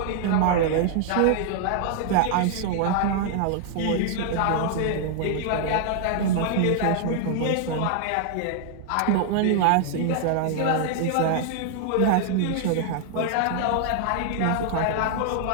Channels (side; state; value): both; different; correlation 0.00